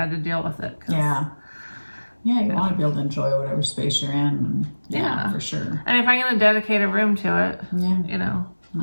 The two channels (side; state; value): both; inverted; correlation -1.00